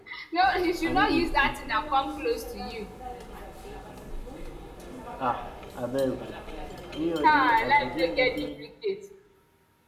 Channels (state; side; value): identical; both; correlation 1.00